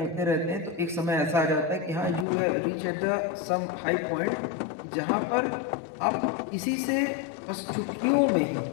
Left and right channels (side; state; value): right; drops out; at 2.2 s